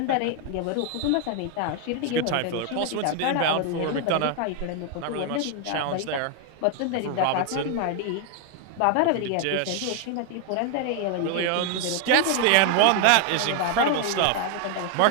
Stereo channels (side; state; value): both; different; correlation 0.01